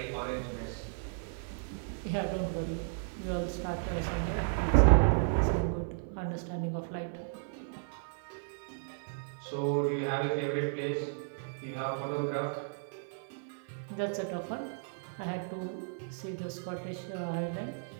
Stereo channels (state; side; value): silent; left; 55 dB below the other